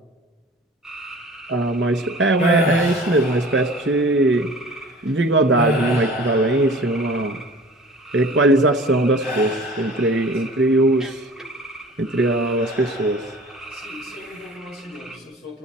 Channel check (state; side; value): normal; both; correlation 0.44